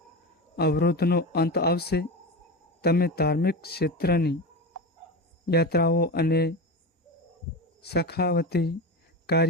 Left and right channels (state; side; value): normal; both; correlation 0.23